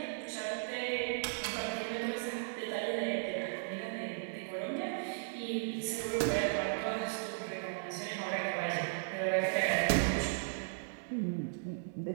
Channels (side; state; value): left; silent; digital silence